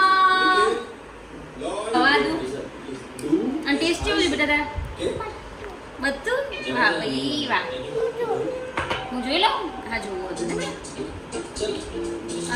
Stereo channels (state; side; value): identical; both; correlation 1.00